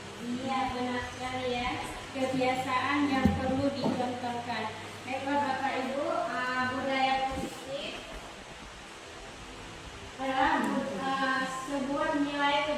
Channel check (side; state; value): both; identical; correlation 1.00